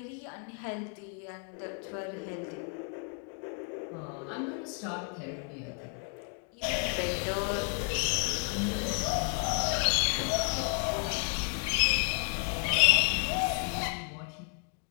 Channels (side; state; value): right; quieter; 39.4 dB